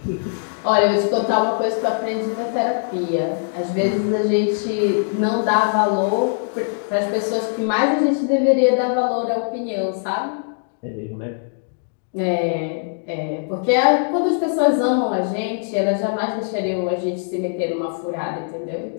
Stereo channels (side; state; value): right; silent; digital silence